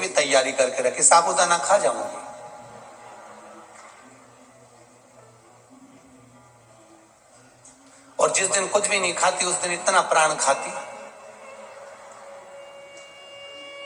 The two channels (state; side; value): identical; both; correlation 1.00